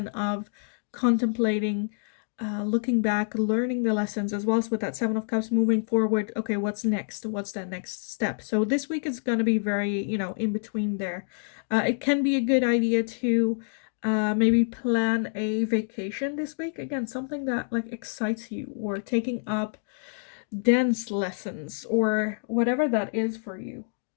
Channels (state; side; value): silent; right; digital silence